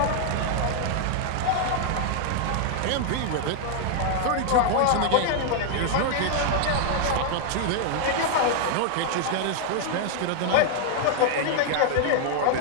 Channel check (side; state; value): both; different; correlation 0.00